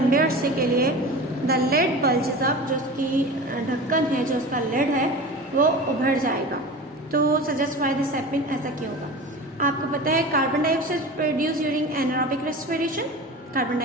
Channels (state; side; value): normal; both; correlation 0.33